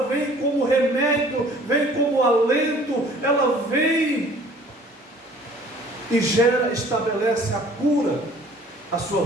vem como remédio, vem como alento, ela vem e estabelece a cura, a sua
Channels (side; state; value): both; normal; correlation 0.52